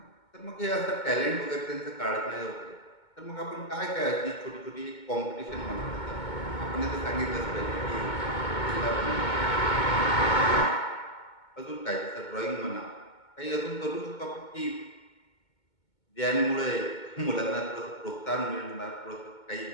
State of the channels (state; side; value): late; right; 2.2 ms